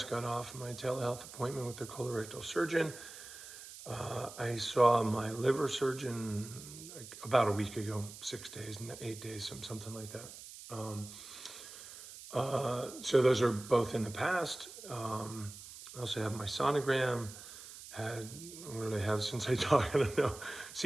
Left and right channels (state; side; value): noise; right; hiss, 14 dB below the sound